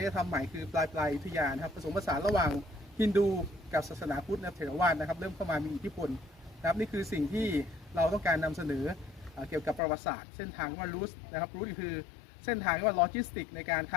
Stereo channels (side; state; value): right; drops out; at 9.8 s